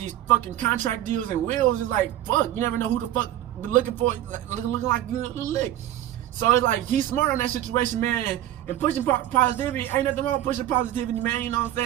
fucking contract deals and wills. It's like, fuck, you never know who the fuck be looking for, looking like you lick. So it's like, he's smart on that situation, man, and pushing positivity. Ain't nothing wrong with pushing positivity, man. You know what I'm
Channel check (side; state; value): left; quieter; 12.8 dB